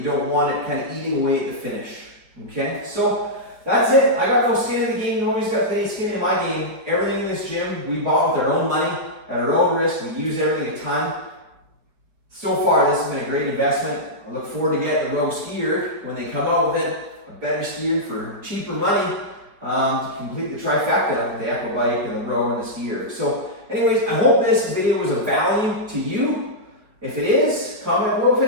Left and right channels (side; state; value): left; late; 4.6 ms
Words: don't want it kind of eating away at the finish. Okay, so that's it. I got no skin in the game. Nobody's got any skin in my game. Everything in this gym we bought with our own money, at our own risk. We use everything a ton. So far, this has been a great investment. I look forward to getting the Rogue skier when they come out with it, a better skier for cheaper money to complete the trifecta of the Echo bike and the rower and the skier. So anyways, I hope this video was of value to you. If it is, comment below.